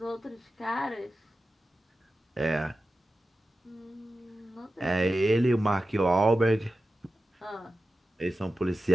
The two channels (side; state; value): both; normal; correlation 0.93